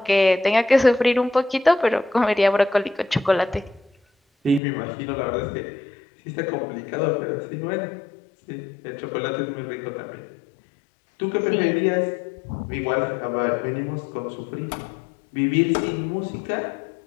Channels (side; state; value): right; drops out; at 4.6 s